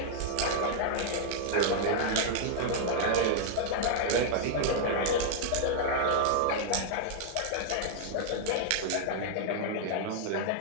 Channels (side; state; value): both; different; correlation -0.01